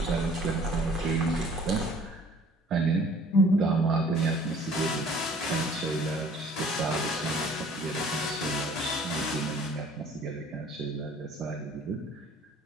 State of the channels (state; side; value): normal; both; correlation 0.53